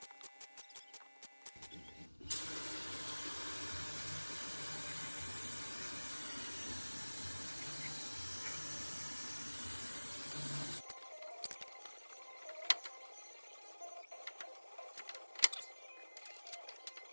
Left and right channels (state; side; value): inverted; both; correlation -1.00